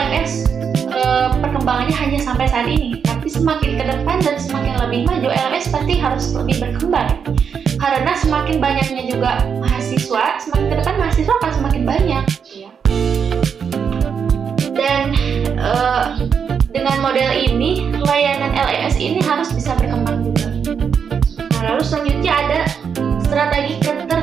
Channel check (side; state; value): left; quieter; 6.8 dB